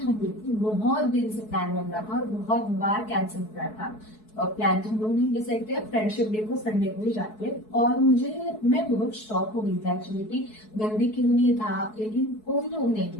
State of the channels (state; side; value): late; right; 4.7 ms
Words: लोग बहुत दिन से प्लान बन रहा था और बहुत बार कैंसिल कर रहा था। प्लान तो हम लोग नहीं डिसाइड किया, फ्रेंडशिप डे को संडे को ही जाते हैं। और मैं बहुत शॉक हो गई था एक्चुअली कि गंदी क्यों नहीं था, लेकिन कोई लोग नहीं